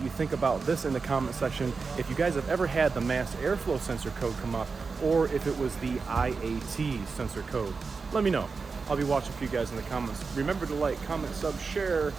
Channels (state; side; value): quieter; left; 4.7 dB